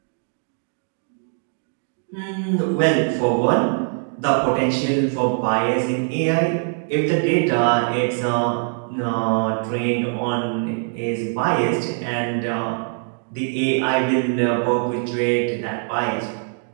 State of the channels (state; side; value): silent; left; 57 dB below the other